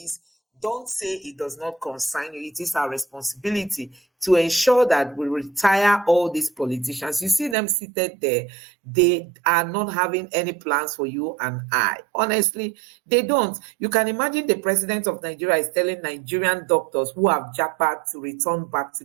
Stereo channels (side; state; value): left; drops out; at 7.6 s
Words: don't say it does not concern you. It is our responsibility to ensure that we retire all these politicians. You see them seated there, they are not having any plans for you and I. Honestly, they don't. You can imagine the president of Nigeria is telling Nigerian doctors who have jackpot to return back to